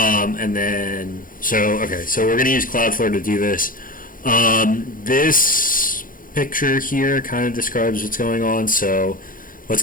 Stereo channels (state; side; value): late; right; 0.40 ms